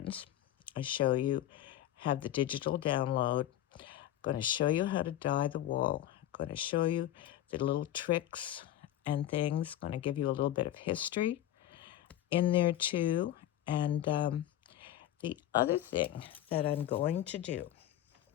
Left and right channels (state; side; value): quieter; right; 12.7 dB